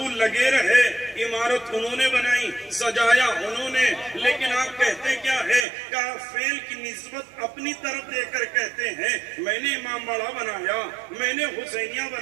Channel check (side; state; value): left; drops out; at 5.7 s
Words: لگے رہے، عمارت انہوں نے بنائی، سجایا انہوں نے، لیکن آپ کہتے کیا ہے کہ فعل کی نسبت اپنی طرف دے کر کہتے ہیں میں نے امام باڑہ بنایا، میں نے حسینیہ